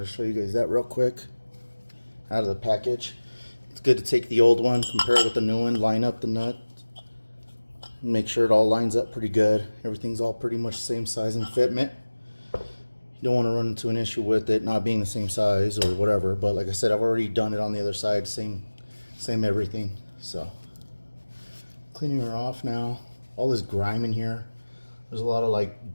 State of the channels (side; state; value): both; inverted; correlation -1.00